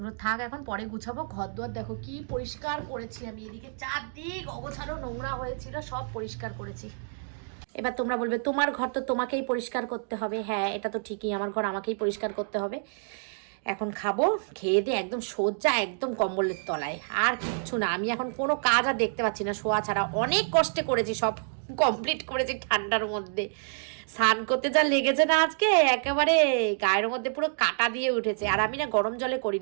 থাক, এখন পরে গুছাবো। ঘর দুয়ার দেখো কি পরিষ্কার করেছি আমি, এদিকে চারদিক অগোছালো নোংরা হয়েছিল, সব পরিষ্কার করেছি। এবার তোমরা বলবে তোমার ঘর তো তোমাকেই পরিষ্কার করতে হবে। হ্যাঁ, এটা তো ঠিকই, আমার ঘর আমাকেই পরিষ্কার করতে হবে। এখন খাবো, খেয়ে দিয়ে একদম সোজা একদম কম্বলের তলায়, আর কিচ্ছু না। আমি এখন কোনো কাজ আর দেখতে পাচ্ছি না শোয়া ছাড়া। অনেক কষ্টে করেছি, সব কমপ্লিট করেছি ঠান্ডার মধ্যে। স্নান করতে যা লেগেছে না আজকে, একেবারে গায়ের মধ্যে পুরো কাটা দিয়ে উঠেছে। আর আমি না গরম জলে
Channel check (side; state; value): left; silent; digital silence